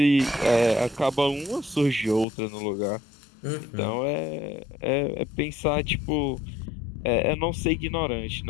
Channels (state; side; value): drops out; right; at 2.2 s